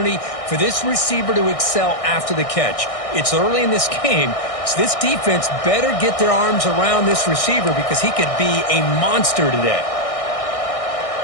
for this receiver to excel after the catch. It's early in this game, so this defense better get their arms around this receiver because he could be a monster today.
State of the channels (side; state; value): right; late; 1.6 ms